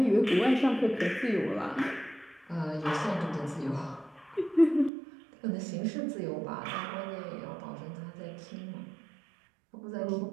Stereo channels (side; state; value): left; drops out; at 4.9 s